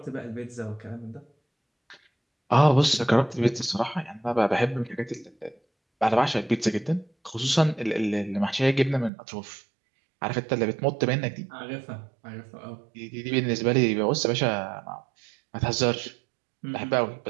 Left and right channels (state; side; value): drops out; left; at 9.1 s